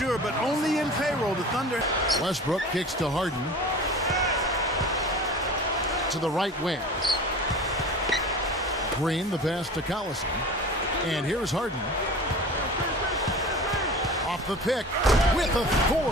but only in payroll. The Thunder. Westbrook kicks to Harden. To the right wing. Green, the pass to Collison. And here's Harden. Off the pick with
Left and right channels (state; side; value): normal; both; correlation 0.38